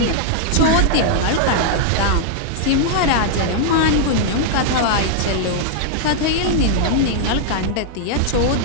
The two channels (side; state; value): both; different; correlation -0.01